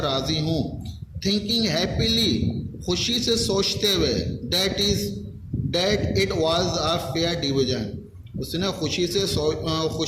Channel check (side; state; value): both; identical; correlation 1.00